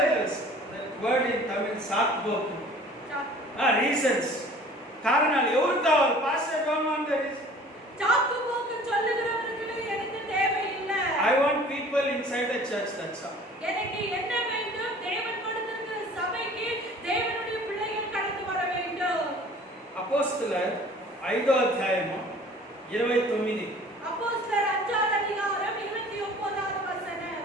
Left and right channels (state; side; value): normal; both; correlation 0.48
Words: that word in Tamil, saatboku. Reasons. காரணம் எவருக்கு காవాలి? Pastor don't want the reason. சாக்கு போக்கு சொல்லுகிறவர்களுக்கு எனக்கு தேவையில்லை. I want people inside the church, that's all. எனக்கு என்ன வேண்டும்? தேவன் கொடுத்திருக்கிற சபைக்கு தேவனுடைய பிள்ளைகள் கடந்து வர வேண்டும். அப்போஸ்தலர் 5వ అధ్యాయము 29. அப்போஸ்தலர் 5வது அதிகாரம் 29வது